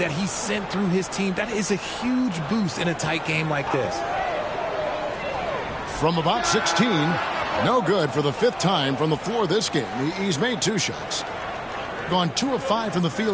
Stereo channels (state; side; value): identical; both; correlation 1.00